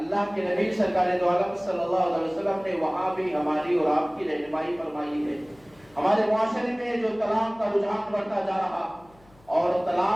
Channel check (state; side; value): noise; left; hum, 28 dB below the sound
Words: کے نبی سرکار دو عالم صلی اللہ علیہ وسلم نے وہاں بھی ہماری اور آپ کی رہنمائی فرمائی ہے۔ ہمارے معاشرے میں جو طلاق کا رجحان بڑھتا جا رہا، اور